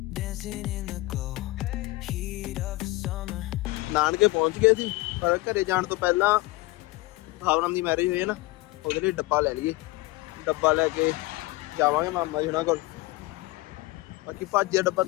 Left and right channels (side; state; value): right; quieter; 20.3 dB